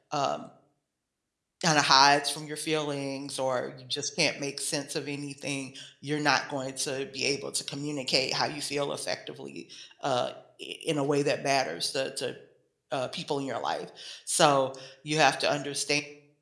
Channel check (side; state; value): both; identical; correlation 1.00